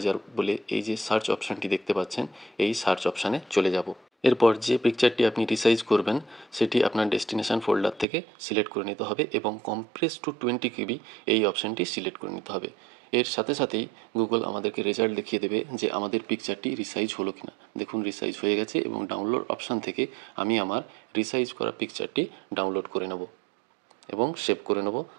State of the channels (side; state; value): left; drops out; at 8.1 s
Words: বলে এই যে সার্চ অপশানটি দেখতে পাচ্ছেন এই সার্চ অপশানে চলে যাব। এরপর যে পিকচারটি আপনি রিসাইজ করবেন সেটি আপনার ডেস্টিনেশন ফোল্ডার থেকে সিলেক্ট করে নিতে হবে এবং কম্প্রেস টু 20 KB এই অপশানটি সিলেক্ট করে নিতে হবে। এর সাথে সাথেই গুগল আমাদেরকে রেজাল্ট দেখিয়ে দেবে যে আমাদের পিকচারটি রিসাইজ হলো কিনা। দেখুন রিসাইজ হয়ে গেছে এবং ডাউনলোড অপশান থেকে আমি আমার রিসাইজ করা পিকচারটি ডাউনলোড করে নেব এবং সেভ করে নেব